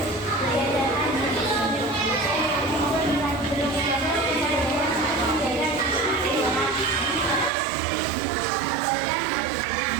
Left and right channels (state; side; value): drops out; left; at 7.5 s